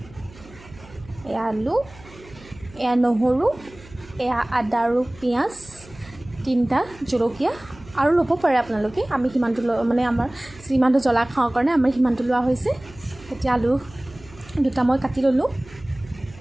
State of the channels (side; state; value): right; noise; hum, 21 dB below the sound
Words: এয়া আলু, এয়া নহৰু, এয়া আদা আৰু পিঁয়াজ, 3টা জলকীয়া আৰু ল'ব পাৰে আপোনালোকে। আমি সিমানটো আমাৰ যিমানটো জ্বলা খাওঁ কাৰণে আমাৰ সিমানটো লোৱা হৈছে। এতিয়া আলু 2টা মই কাটি ল'লোঁ।